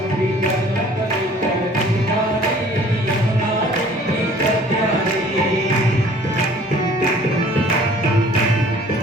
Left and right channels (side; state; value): both; normal; correlation 0.53